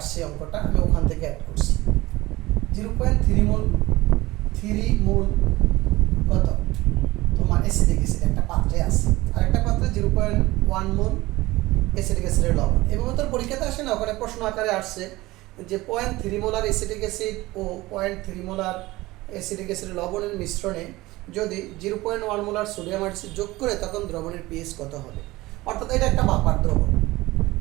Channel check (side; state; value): left; quieter; 19.3 dB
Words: অঙ্কটা, আমি ওখান থেকে অ্যাড করছি। 0.3 মোল কত তোমার অ্যাসিডিক অ্যাসিড একটা পাত্রে আছে, আর একটা পাত্রে 0.1 মোল অ্যাসিডিক অ্যাসিডের লবণ। এভাবে তোর পরীক্ষাতে আসে না, ওখানে প্রশ্ন আকারে আসছে যে 0.3 মোলার অ্যাসিডিক অ্যাসিড ও 0.3 মোলার অ্যাসিডিক অ্যাসিডের লবণের মিশ্রণে যদি 0.1 মোলার সোডিয়াম হাইড্রোক্সাইড যোগ করে তখন দ্রবণের পিএইচ কত হবে। অর্থাৎ এটা একটা বাপার দ্রবণ,